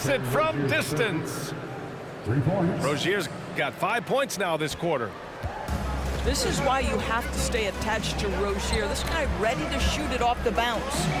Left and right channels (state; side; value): identical; both; correlation 1.00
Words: it from distance. 3 points. Rozier's got 5 points now this quarter. This is why you have to stay attached to Rozier. This guy ready to shoot it off the bounce.